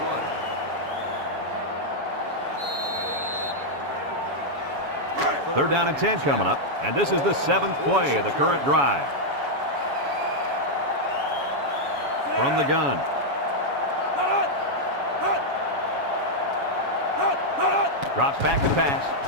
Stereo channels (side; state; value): left; late; 7.1 ms